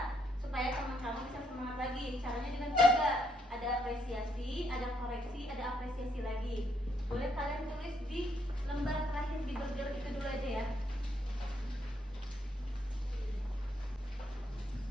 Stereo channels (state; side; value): normal; both; correlation 0.74